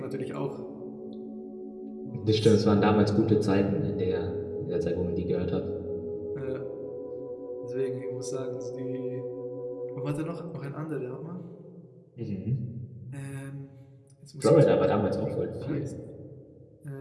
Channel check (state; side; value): identical; both; correlation 1.00